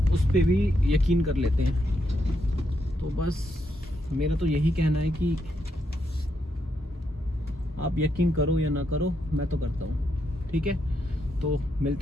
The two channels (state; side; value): normal; both; correlation 0.80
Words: उस पर भी यकीन कर लेते हैं। तो बस मेरा तो यही कहना है कि आप यकीन करो या ना करो, मैं तो करता हूँ। ठीक है, तो